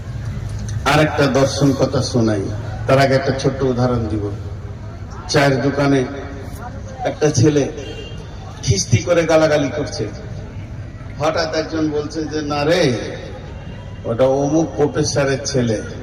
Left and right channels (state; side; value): identical; both; correlation 1.00